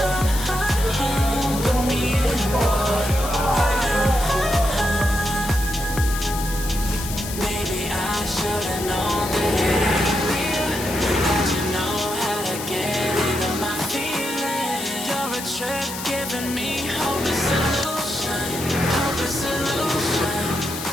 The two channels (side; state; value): left; noise; hiss, 9 dB below the sound